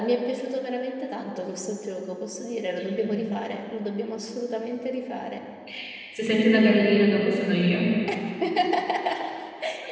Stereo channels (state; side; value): identical; both; correlation 1.00